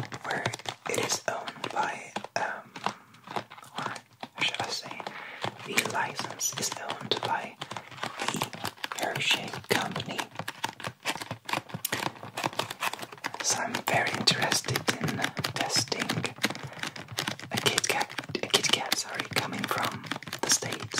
where it is owned by, or should I say, the license is owned by the Hershey Company. So I'm very interested in testing a Kit Kat coming from the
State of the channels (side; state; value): both; identical; correlation 1.00